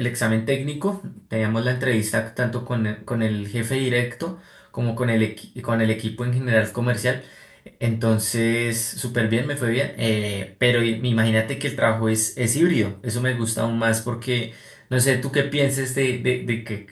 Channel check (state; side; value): identical; both; correlation 1.00